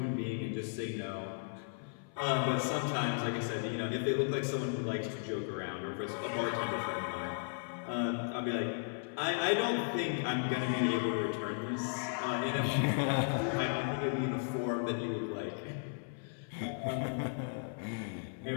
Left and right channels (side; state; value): right; silent; 54 dB below the other